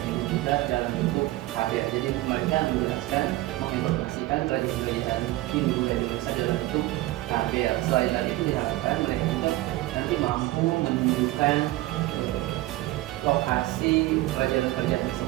Hindu Buddha dalam bentuk karya. Jadi mereka menjelaskan, menginformasikan kerajaan-kerajaan Hindu Buddha di Indonesia dalam bentuk karya. Selain dari itu diharapkan mereka juga nanti mampu menunjukkan lokasi kerajaan-kerajaan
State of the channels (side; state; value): left; quieter; 17.8 dB